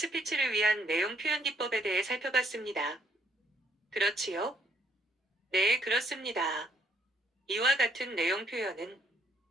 위한 내용 표현 기법에 대해 살펴봤습니다. 그렇지요? 네, 그렇습니다. 이와 같은 내용 표현은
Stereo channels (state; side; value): normal; both; correlation 0.68